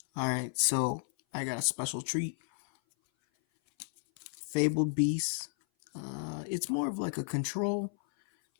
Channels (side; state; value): right; silent; 56 dB below the other